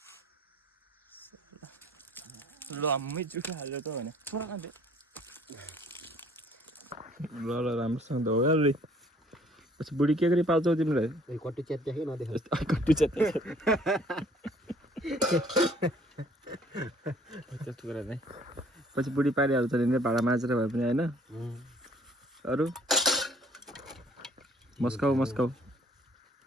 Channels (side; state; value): both; normal; correlation 0.59